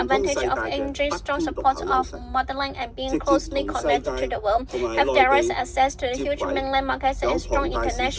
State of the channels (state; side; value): identical; both; correlation 1.00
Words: 通世 advantage 界 of 嘅 enjoying 不 strong 偏獨 support 有優 of 勢， motherland and 直 being 接 closely 同世 connected to 界 the world, 同埋 have 內 direct 地 access to the 接 huge 軌， mainland markets 有 and strong 龐大市